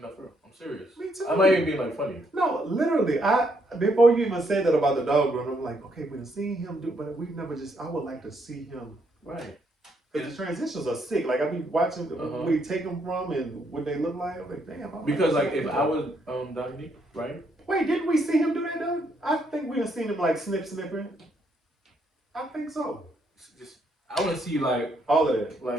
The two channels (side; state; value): both; normal; correlation 0.73